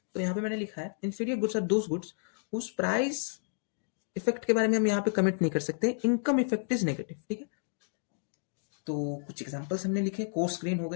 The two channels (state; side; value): silent; right; digital silence